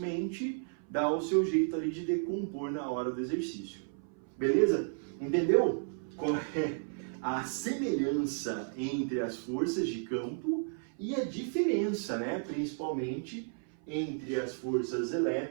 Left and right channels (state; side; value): silent; left; 56 dB below the other